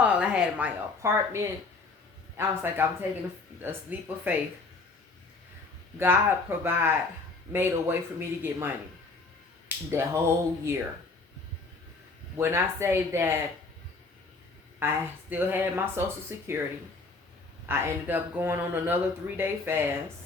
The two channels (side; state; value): right; quieter; 3.8 dB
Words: I had my apartment. I was like, I'm taking a leap of faith. God made a way for me to get money. That whole year. When I say that I still had my Social Security, I ended up going on another 3-day